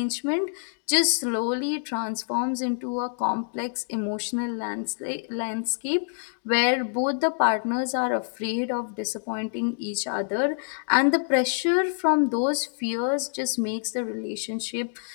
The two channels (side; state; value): right; silent; digital silence